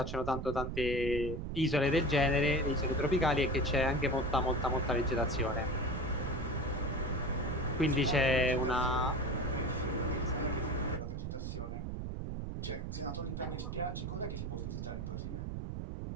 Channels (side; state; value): right; noise; rumble, 4 dB below the sound